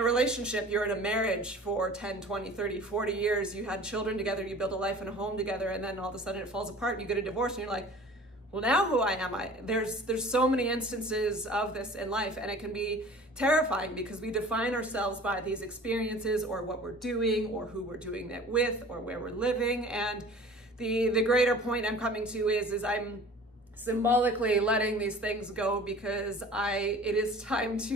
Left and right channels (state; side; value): normal; both; correlation 0.44